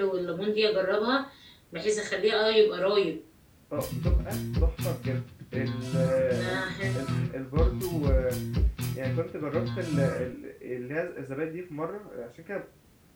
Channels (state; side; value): identical; both; correlation 1.00